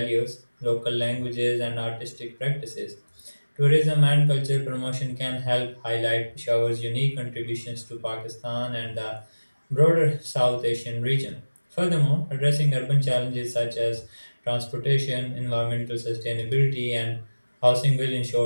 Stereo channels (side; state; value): both; inverted; correlation -1.00